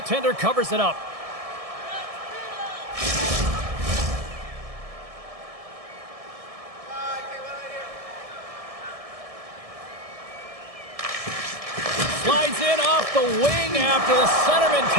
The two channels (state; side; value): late; left; 1.6 ms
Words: covers it up. Slides in off the wing after the centerman